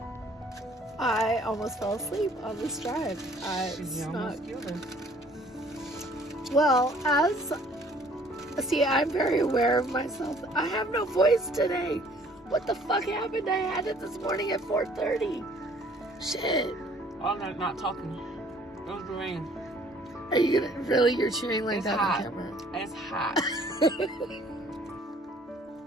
I almost fell asleep on this drive. Well, I'm very aware of myself. I have no voice today. What the fuck happened? I had it this morning at 4:30. Shit. Oh, no, not talking. It was the rain. Are you gonna really? You're chewing like It's that hot. on camera. It's hot.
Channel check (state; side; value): normal; both; correlation 0.57